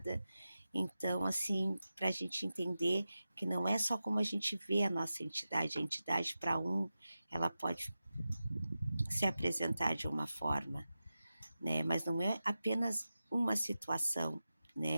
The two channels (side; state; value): both; inverted; correlation -0.93